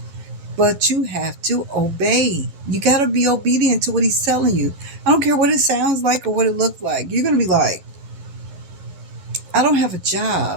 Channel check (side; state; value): left; late; 12 ms